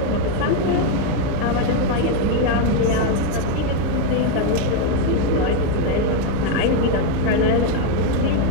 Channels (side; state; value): both; different; correlation 0.02